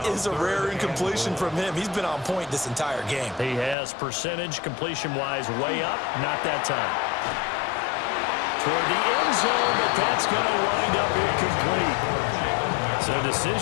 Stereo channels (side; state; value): right; drops out; at 3.8 s